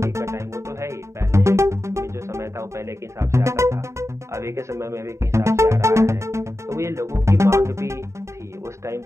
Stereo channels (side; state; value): left; late; 0.14 ms